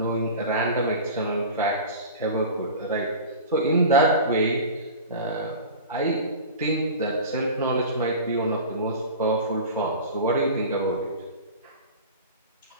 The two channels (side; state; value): both; inverted; correlation -0.34